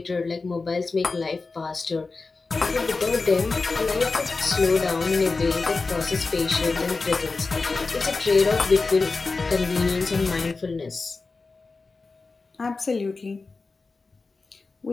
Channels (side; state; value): right; quieter; 4.0 dB